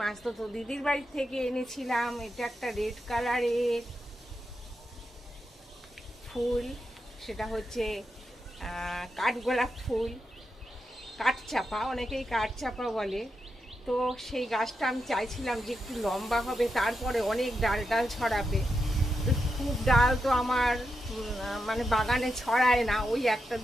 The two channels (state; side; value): normal; both; correlation 0.86